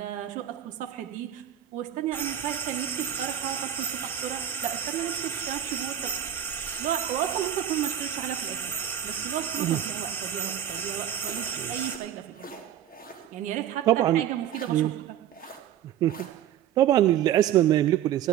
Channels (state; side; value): quieter; left; 10.5 dB